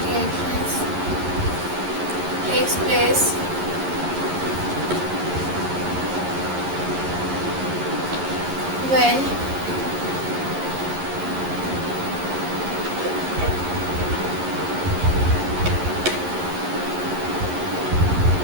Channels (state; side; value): late; left; 11 ms